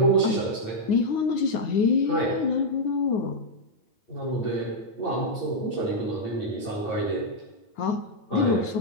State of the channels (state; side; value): late; right; 9.6 ms